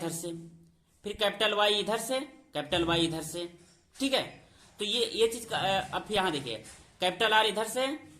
से, फिर कैपिटल वाई इधर से, कैपिटल वाई इधर से। ठीक है, तो ये चीज अब यहां देखिए कैपिटल आर इधर से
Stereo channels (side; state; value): both; identical; correlation 1.00